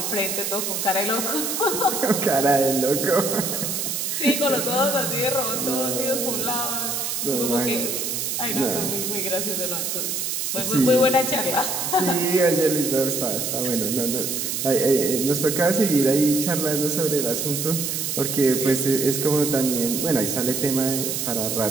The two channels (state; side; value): noise; right; hiss, 2 dB below the sound